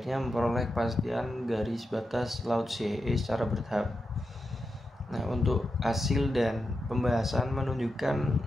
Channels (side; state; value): both; normal; correlation 0.88